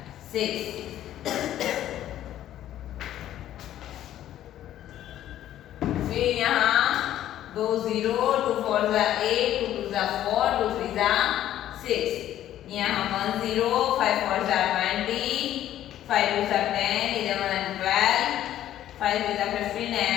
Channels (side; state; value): right; quieter; 12.3 dB